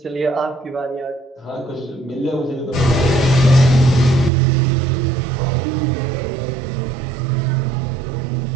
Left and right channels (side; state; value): left; drops out; at 4.3 s